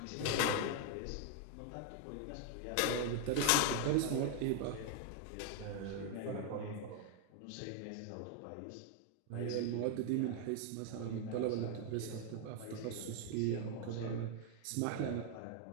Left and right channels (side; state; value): both; different; correlation 0.00